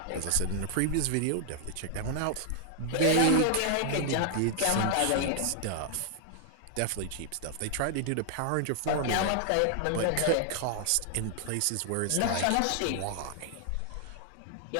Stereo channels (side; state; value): both; different; correlation 0.00